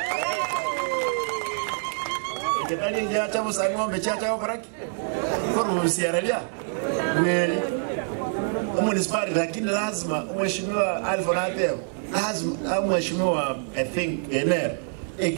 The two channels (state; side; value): silent; left; digital silence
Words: ketali nja cha busa ngombe cha koraki korusi aralia mweli municipality lakini lazima mheshimiwa Alfonate lazima mheshimiwa I think ener